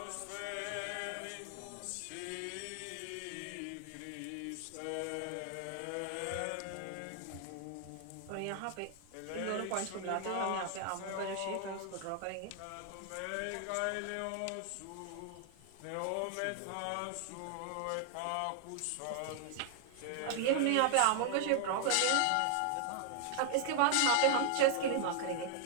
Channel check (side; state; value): both; different; correlation 0.00